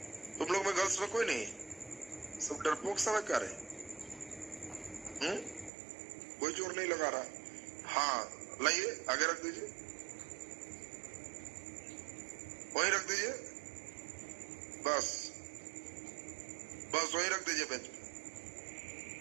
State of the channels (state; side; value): drops out; left; at 5.7 s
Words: तुम लोग में गर्ल्स में कोई नहीं, सब डरपोक सब है क्या रे? कोई जोर नहीं लगा रहा। हाँ लाइए, आगे रख दीजिए, वहीं रख दीजिए, बस बस वहीं रख दीजिए बेंच पे।